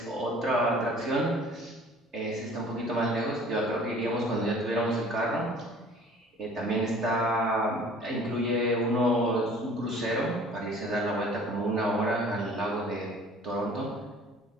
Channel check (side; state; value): both; normal; correlation 0.50